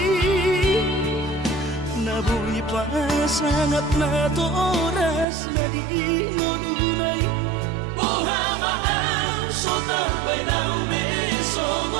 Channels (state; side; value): drops out; left; at 5.2 s